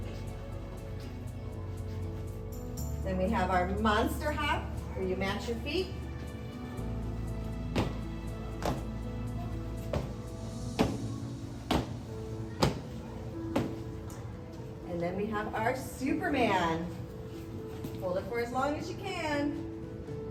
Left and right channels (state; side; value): identical; both; correlation 1.00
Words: Then we have our monster hop, where you match your feet. And then we have our Superman. Hold it for as long as you can.